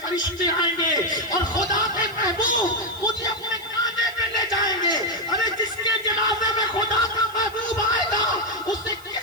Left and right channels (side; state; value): left; noise; hiss, 22 dB below the sound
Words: فرشتے آئیں گے اور خدا کے محبوب مجھے اپنے کاندھے پہ لے جائیں گے۔ ارے جس کے جنازے میں خدا کا محبوب آئے گا، اسے